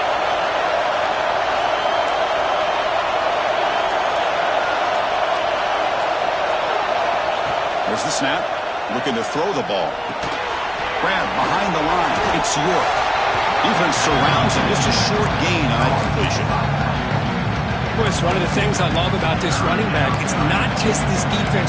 There's the snap. Looking to throw the ball. Grab behind the line. It's York. Defense surrounds him. Just a short gain on that completion. Well, it's one of the things I love about this running back. It's not just this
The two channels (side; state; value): both; identical; correlation 1.00